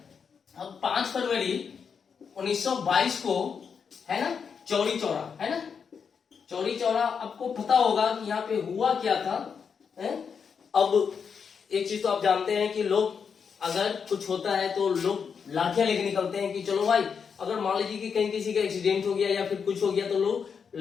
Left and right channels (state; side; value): quieter; right; 6.4 dB